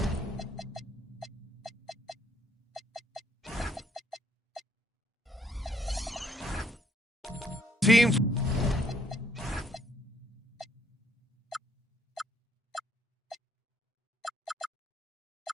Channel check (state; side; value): normal; both; correlation 0.66